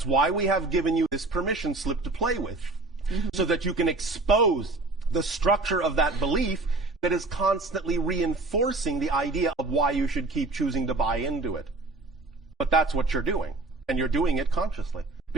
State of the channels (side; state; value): left; quieter; 3.2 dB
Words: why we have given you this permission slip to play with, so that you can expose the structure of that belief that is constantly reinforcing the idea of why you should keep choosing to buy into it. But that's what you're doing, and you're doing it consciously,